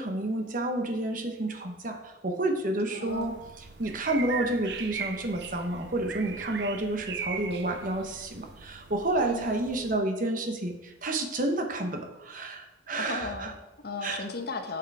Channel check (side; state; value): both; normal; correlation 0.35